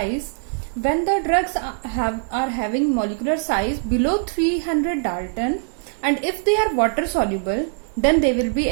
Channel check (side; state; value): left; silent; digital silence